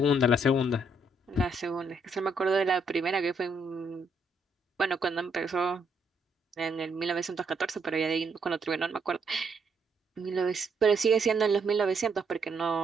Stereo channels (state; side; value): normal; both; correlation 0.73